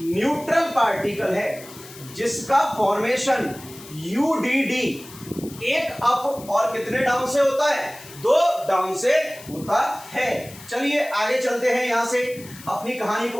न्यूट्रल पार्टिकल है, जिसका फॉर्मेशन यूडीडी 1 अप और कितने डाउन से होता है? 2 डाउन से होता है। चलिए आगे चलते हैं, यहां से अपनी कहानी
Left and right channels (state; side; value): noise; left; hiss, 18 dB below the sound